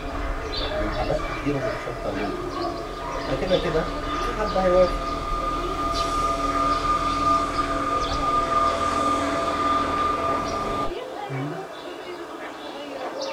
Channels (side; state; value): both; identical; correlation 1.00